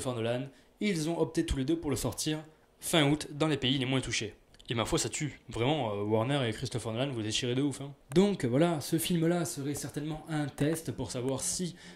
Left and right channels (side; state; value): both; identical; correlation 1.00